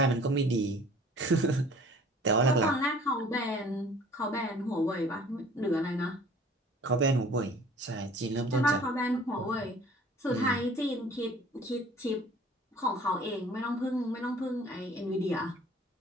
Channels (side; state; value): both; normal; correlation 0.50